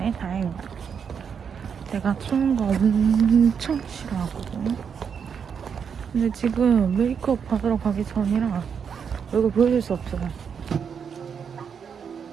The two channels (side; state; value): left; quieter; 6.9 dB